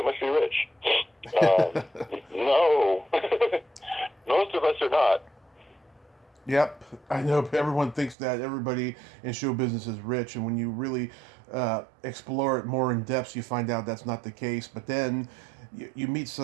must be rich. No, most of us are not. Yep, I know everyone thinks that everybody in show business is rich, and when you really explore it more in depth, you find out that's not the case. But then you meet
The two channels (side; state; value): left; drops out; at 8.2 s